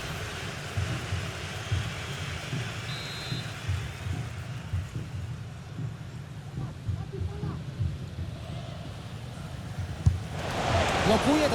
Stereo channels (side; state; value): both; identical; correlation 1.00